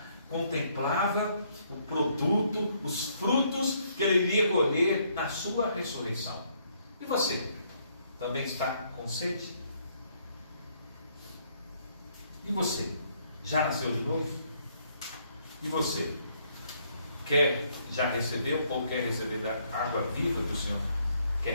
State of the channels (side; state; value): both; inverted; correlation -0.69